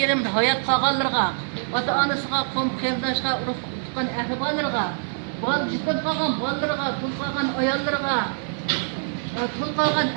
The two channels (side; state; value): left; silent; digital silence